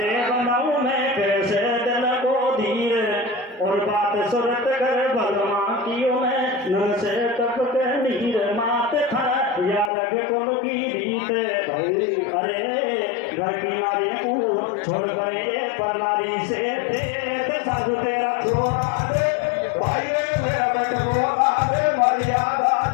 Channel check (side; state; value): right; drops out; at 9.9 s